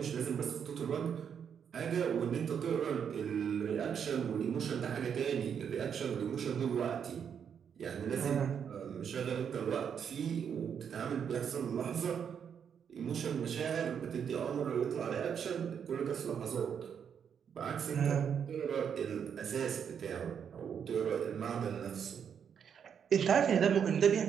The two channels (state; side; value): quieter; left; 7.7 dB